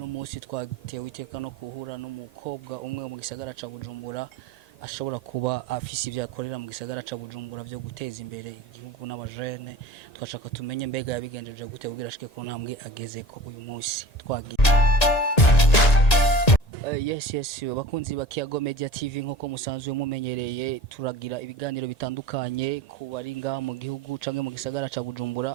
munsi twatewe iteka no kuhura n'umukobwa umwe mu gisagara ca Bujumbura ashobora kuba afise ivyo akorera mu gisagara ca Bujumbura byo guteza imbere igihugu n'abajene twashaka tumenye mbega yabigenjeje gute kugira ashike ku ntambwe ageze ko uyu munsi twagiye Yes bakunzi ba Kiago Media TV nk'uko musanzwe mumenyereye turagira ibiganiro bitandukanye ku bari ngaha mu gihugu canke mu gisagara ca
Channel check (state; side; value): late; right; 1.9 ms